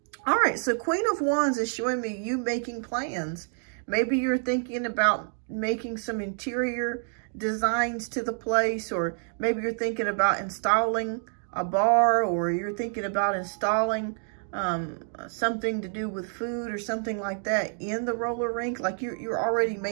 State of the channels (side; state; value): left; silent; 56 dB below the other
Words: All right, so Queen of Wands is showing me you making plans. Maybe you're thinking about making some interior designs to the place, or maybe you're thinking about installing a bar, or you're thinking about installing something to do with food or something like that in the roller rink. Like you're already